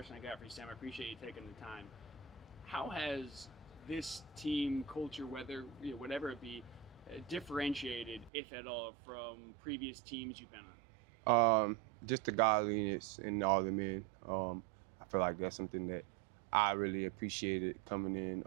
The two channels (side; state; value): left; drops out; at 8.3 s